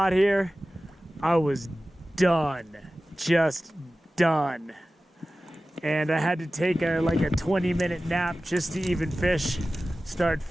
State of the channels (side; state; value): both; normal; correlation 0.96